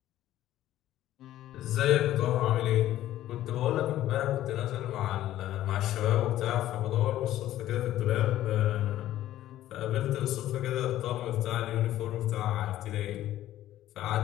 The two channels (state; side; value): quieter; right; 13.6 dB